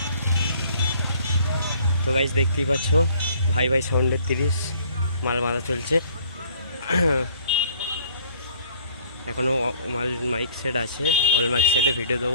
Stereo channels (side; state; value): both; inverted; correlation -0.57